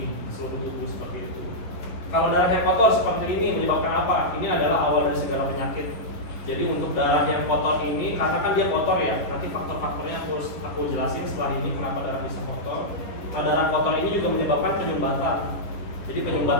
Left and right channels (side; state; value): right; late; 11 ms